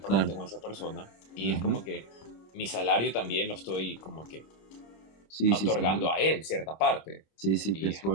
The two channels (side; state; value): right; late; 26 ms